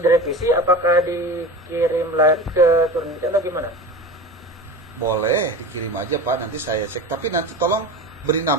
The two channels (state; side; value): normal; both; correlation 0.30